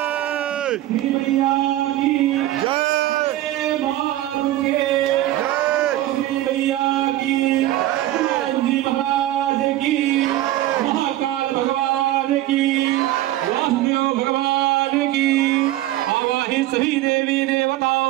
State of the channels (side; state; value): left; quieter; 14.8 dB